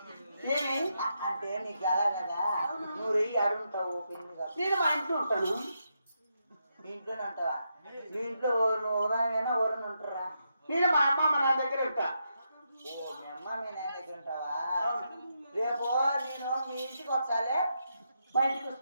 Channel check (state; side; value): inverted; both; correlation -0.83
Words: ఏమి అంటే నీకు ఎలా కదా నువ్వు రెయ్యి ఆడుంటావు పెళ్లి కాదు నేను మా ఇంట్లో ఉంటాను. నీ ఇంట్లోనే ఉంటావా నీ ఇంట్లో నువ్వు ఉదయమైనా ఎవరైనా ఉంటారా నేను మా అమ్మ మా నాన్న దగ్గర ఉంటా. ఓ మీ అమ్మ మీ నాయన దగ్గర ఉంటావా రేపు నేను మీ ఇంటికి వచ్చాలే మా ఇంటికి